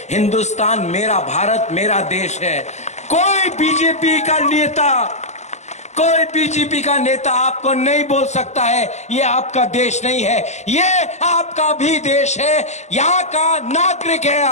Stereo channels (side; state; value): right; late; 0.33 ms